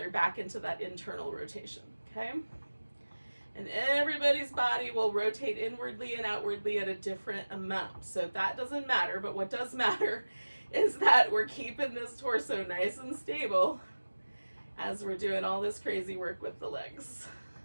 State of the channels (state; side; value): inverted; both; correlation -1.00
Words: back into that internal rotation. Okay? And everybody's body will rotate inwardly and outwardly at a different amount. So that doesn't matter, but what does matter is that we're keeping this torso nice and stable as we're doing all this crazy work with the legs.